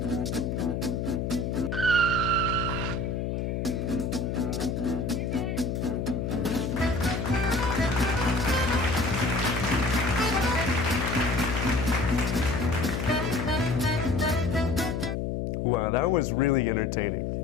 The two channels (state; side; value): noise; left; hum, 1 dB below the sound